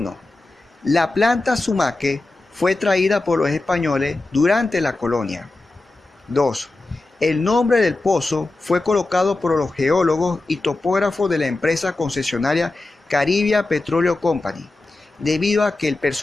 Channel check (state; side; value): quieter; right; 3.0 dB